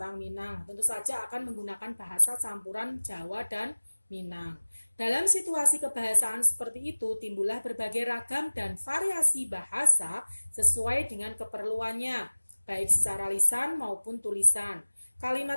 Minang, tentu saja akan menggunakan bahasa campuran Jawa dan Minang. Dalam situasi kebahasaan seperti itu, timbullah berbagai ragam dan variasi bahasa sesuai dengan keperluannya, baik secara lisan maupun tulisan.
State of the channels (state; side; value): inverted; both; correlation -1.00